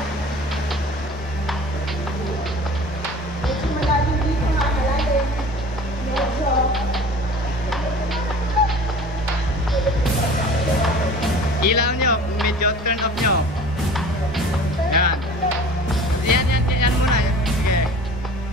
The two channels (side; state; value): both; normal; correlation 0.43